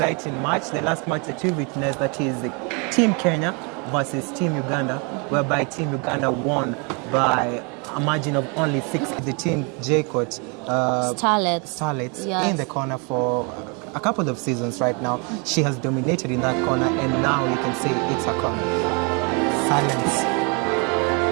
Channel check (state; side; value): quieter; left; 33.6 dB